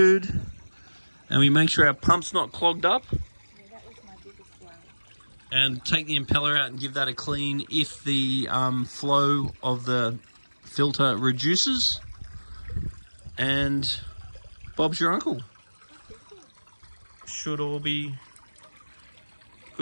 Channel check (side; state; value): both; inverted; correlation -1.00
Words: And we make sure our pump's not clogged up. Yeah, that was my biggest worry. and take the impeller out and give that a clean if the flow of the filter reduces. And Bob's your uncle. Should all be